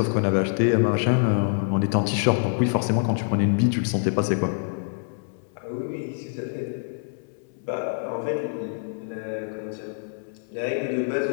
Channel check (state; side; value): silent; right; 58 dB below the other